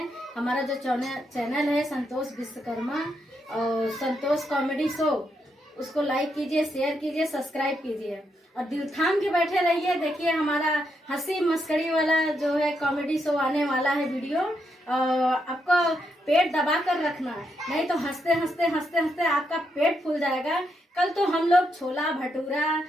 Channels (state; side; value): normal; both; correlation 0.80